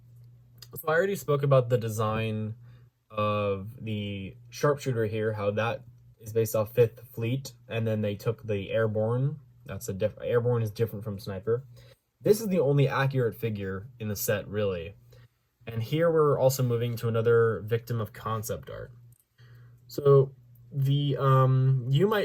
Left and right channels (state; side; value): identical; both; correlation 1.00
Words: I already spoke about the design of the sharpshooter here, how that is based off 5th Fleet, and then they took the Airborne. Airborne is different from Sniper. This is the only accurate figure in the set, really. And here we're also moving to another victim of concept art. So the you